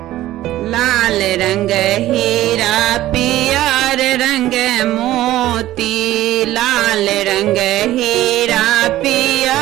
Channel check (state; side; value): quieter; left; 14.9 dB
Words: लाल रंग हीरा पियर रंग मोती, लाल रंग हीरा